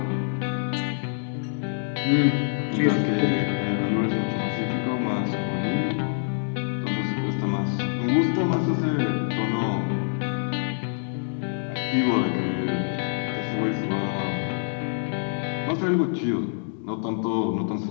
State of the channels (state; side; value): silent; right; digital silence